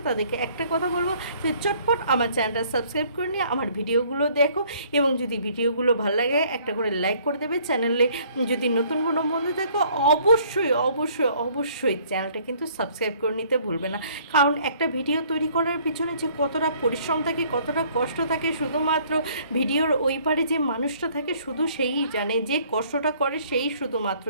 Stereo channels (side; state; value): both; inverted; correlation -0.59